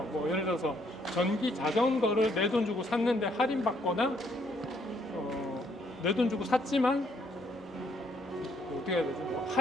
뭐 예를 들어서 전기 자전거를 내 돈 주고 샀는데 할인받거나 내 돈 주고 샀지만 어떻게 해야 되지? 뭐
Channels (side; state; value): both; normal; correlation 0.69